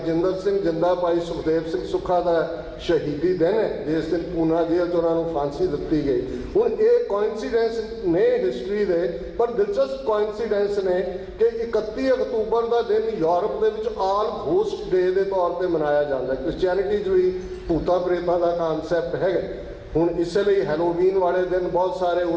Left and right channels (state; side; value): identical; both; correlation 1.00